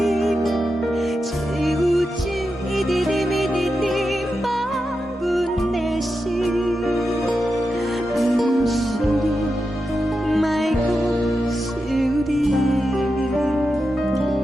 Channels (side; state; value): both; normal; correlation 0.89